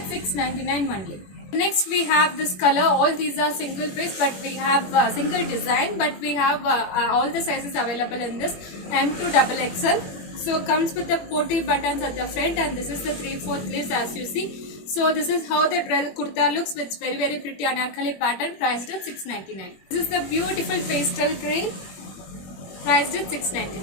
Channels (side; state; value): right; late; 21 ms